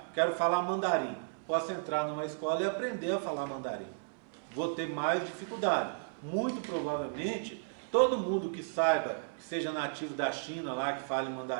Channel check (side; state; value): left; silent; 55 dB below the other